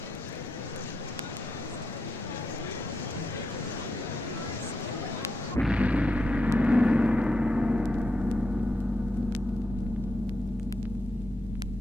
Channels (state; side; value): normal; both; correlation 0.84